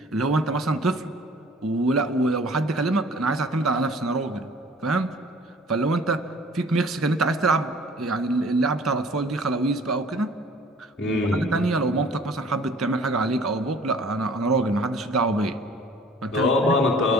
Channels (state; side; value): normal; both; correlation 0.51